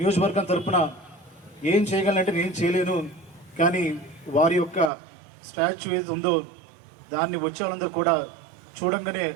తరఫున ఏం చేయగలనంటే నేను చేయలేను, కానీ వారి యొక్క స్టాచ్యూ ఏది ఉందో దాన్ని వచ్చే వాళ్ళందరూ కూడా చూడంగానే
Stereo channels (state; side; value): drops out; left; at 4.9 s